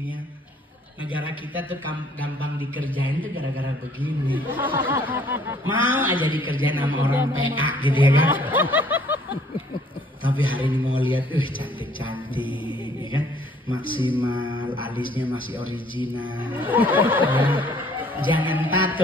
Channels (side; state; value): both; normal; correlation 0.60